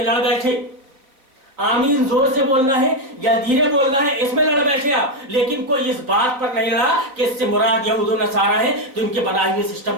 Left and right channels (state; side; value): late; left; 3.8 ms